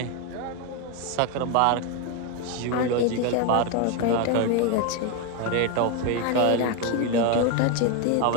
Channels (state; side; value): different; both; correlation 0.02